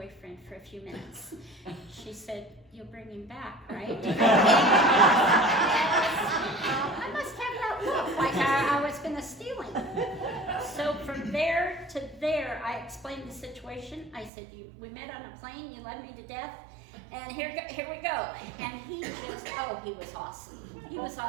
for a few minutes. She said, you'll bring him back, right? I must have that look, like I was gonna steal him. So from there to there, I explained the situation. I said, we met on a plane, you led me to death, and here we go. And he he was awesome. He was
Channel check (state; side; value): drops out; left; at 14.3 s